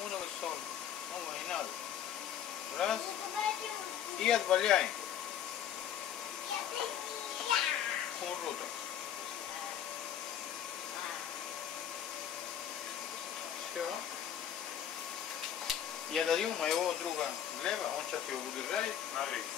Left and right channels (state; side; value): quieter; right; 9.8 dB